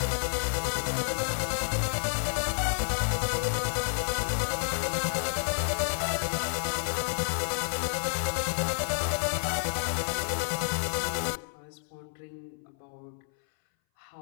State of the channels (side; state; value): right; silent; 58 dB below the other